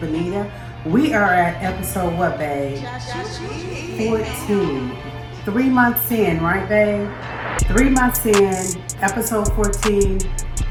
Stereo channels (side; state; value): both; identical; correlation 1.00